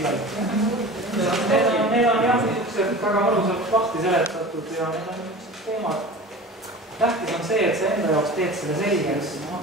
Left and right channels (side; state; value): both; normal; correlation 0.36